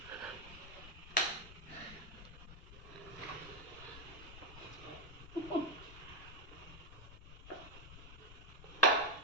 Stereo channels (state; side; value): noise; left; rumble, 14 dB below the sound